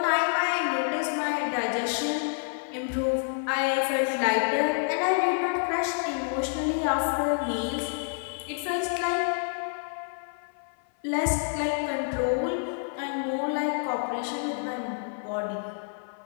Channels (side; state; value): right; silent; 57 dB below the other